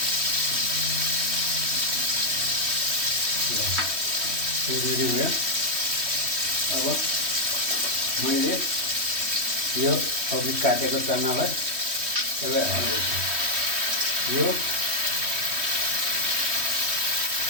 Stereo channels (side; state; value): left; late; 3.1 ms